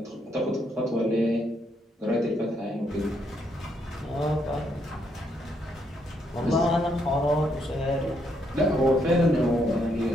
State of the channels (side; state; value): both; normal; correlation 0.75